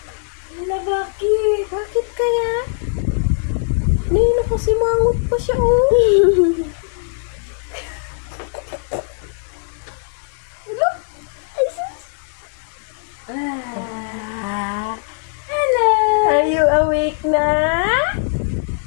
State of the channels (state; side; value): silent; right; digital silence